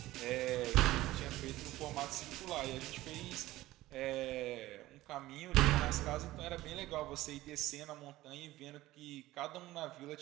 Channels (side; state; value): left; quieter; 16.8 dB